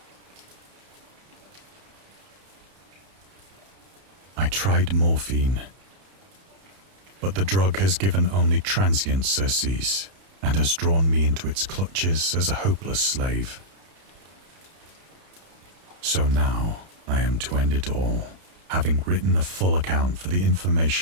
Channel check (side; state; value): left; late; 31 ms